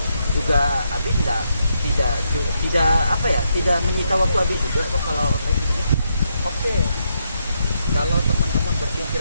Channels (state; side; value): inverted; both; correlation -0.79